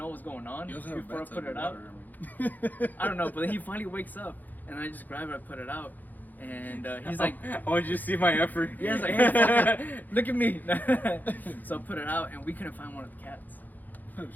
what's going on You also have a before I bathtub put with it out. water, I mean. I don't know, but then he finally wakes up, and I just grab it, I put it out, and he's like, I want you to see my effort. yeah, he's like, hey, fucker, look at me. So I put it out, and we couldn't find one of the cats.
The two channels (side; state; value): right; late; 0.084 ms